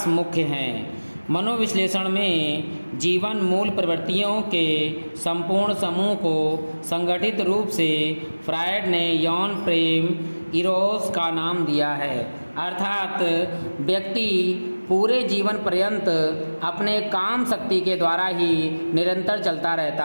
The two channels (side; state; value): both; inverted; correlation -1.00